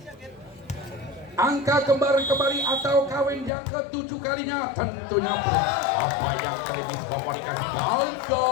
Angka kembali atau kawin yang ke-7 kalinya tentunya apa yang terjadi komunikasi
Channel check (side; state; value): right; drops out; at 3.5 s